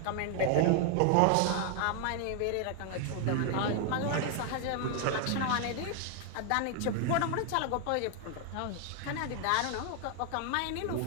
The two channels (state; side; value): different; both; correlation 0.00